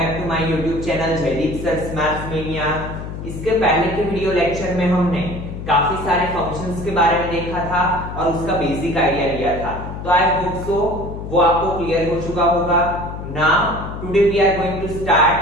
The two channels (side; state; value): left; noise; hum, 8 dB below the sound